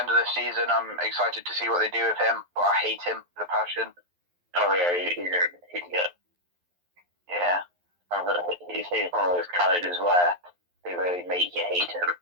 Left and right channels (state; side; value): late; left; 11 ms